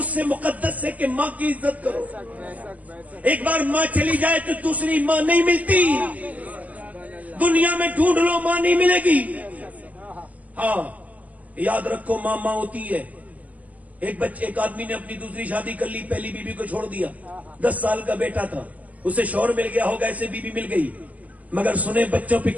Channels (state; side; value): late; left; 0.076 ms